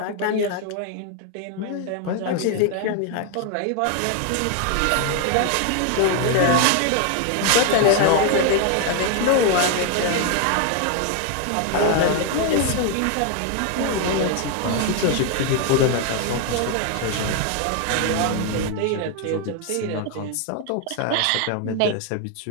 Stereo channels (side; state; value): both; different; correlation 0.01